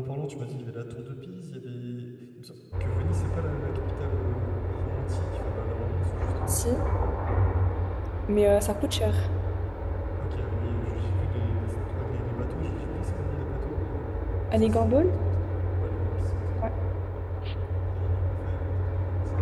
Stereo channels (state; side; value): identical; both; correlation 1.00